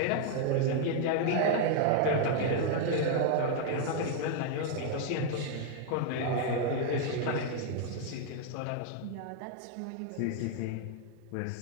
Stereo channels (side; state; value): both; different; correlation 0.00